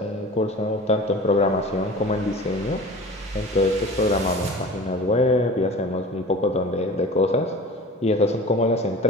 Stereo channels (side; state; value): both; normal; correlation 0.39